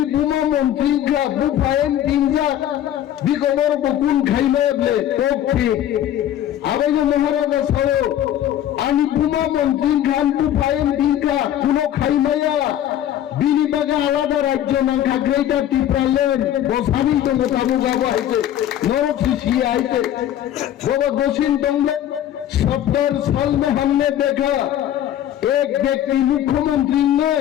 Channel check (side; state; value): right; quieter; 11.4 dB